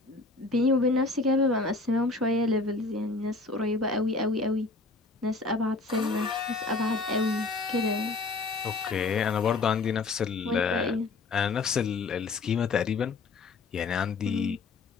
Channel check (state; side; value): quieter; right; 3.7 dB